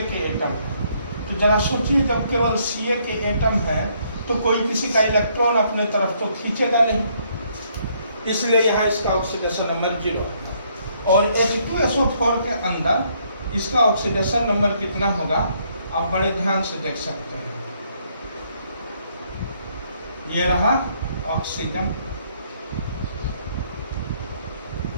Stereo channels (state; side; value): inverted; both; correlation -0.69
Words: के एटम है। तो जरा सोचिए, जब केवल Ca के एटम है तो कोई किसी का इलेक्ट्रॉन अपने तरफ तो खींचेगा नहीं, इसलिए यहाँ इसका ऑक्सीडेशन नंबर 0। और H2SO4 के अंदर इसका ऑक्सीडेशन नंबर कितना होगा आप बड़े ध्यान से देख सकते हैं। ये रहा ऑक्सीजन,